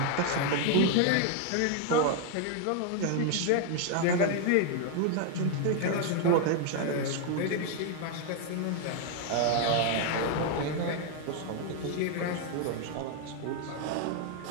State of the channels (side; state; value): both; different; correlation 0.00